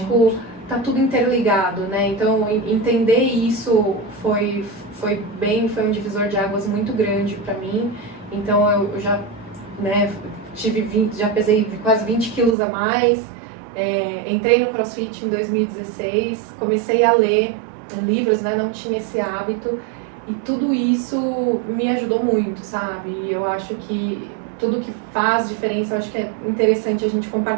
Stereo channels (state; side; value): drops out; left; at 12.6 s